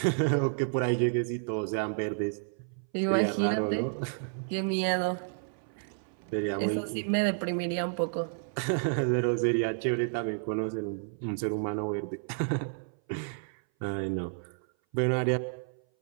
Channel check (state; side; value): silent; left; 57 dB below the other